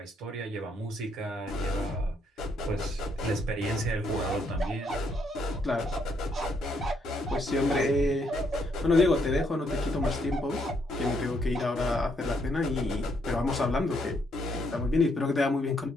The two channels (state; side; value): normal; both; correlation 0.73